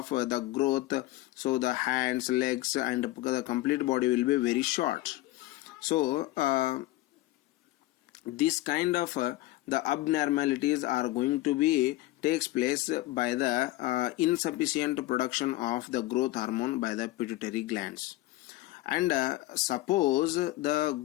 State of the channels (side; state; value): right; quieter; 17.7 dB